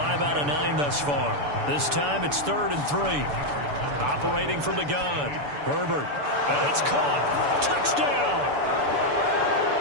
out of 9 thus far. This time it's 3rd and 3. Operating from the gun. Herbert And it's caught. Touchdown.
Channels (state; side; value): late; left; 6.9 ms